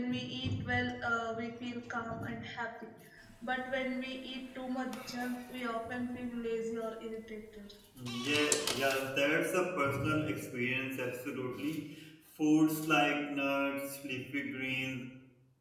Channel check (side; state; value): both; identical; correlation 1.00